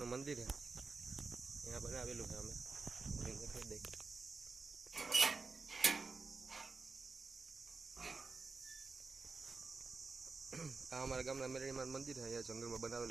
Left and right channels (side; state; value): left; quieter; 4.3 dB